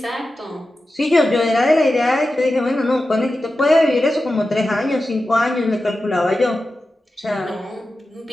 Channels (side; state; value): both; normal; correlation 0.92